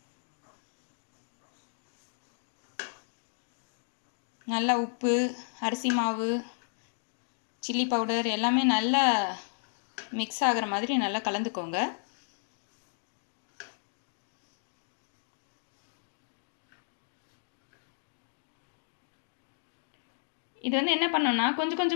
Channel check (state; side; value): silent; right; digital silence